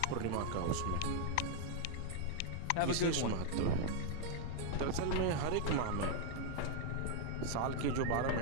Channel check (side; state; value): both; different; correlation 0.00